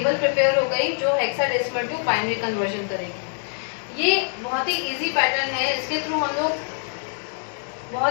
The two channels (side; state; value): right; silent; digital silence